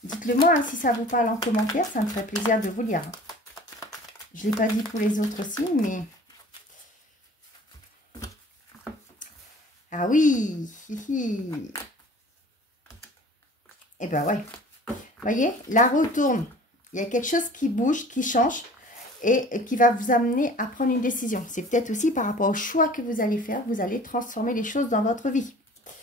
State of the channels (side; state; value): both; normal; correlation 0.46